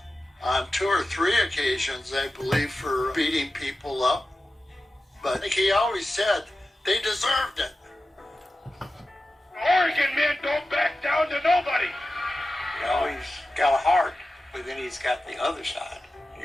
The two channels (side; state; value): both; normal; correlation 0.94